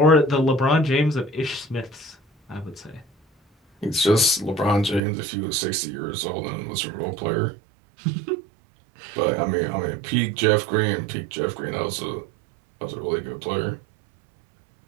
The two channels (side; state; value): left; drops out; at 5.0 s